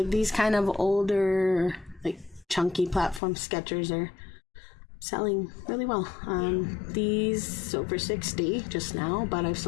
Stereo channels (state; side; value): drops out; right; at 3.2 s